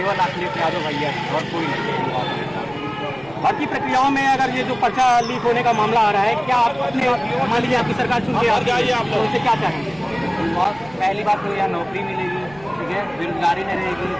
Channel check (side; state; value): right; noise; rumble, 23 dB below the sound